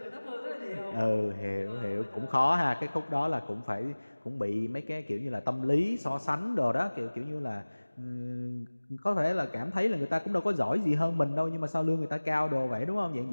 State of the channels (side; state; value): both; inverted; correlation -1.00